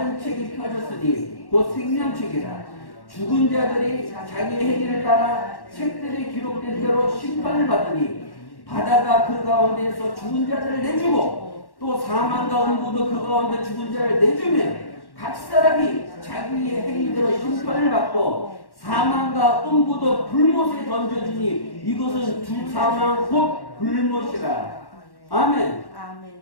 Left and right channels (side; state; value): right; late; 1.1 ms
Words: 책이 펴졌으니 곧 생명책이라. 죽은 자들이 자기의 행위를 따라 책들이 기록된 대로 심판을 받으니 바다가 그 가운데에서 죽은 자들을 내주고 또 사망과 음부도 그 가운데 죽은 자를 내주면 각 사람이 자기의 행위대로 심판을 받고 사망과 음부도 불못에 던져지니 이것은 두 사망 곧 불못이라. 아멘. 아멘.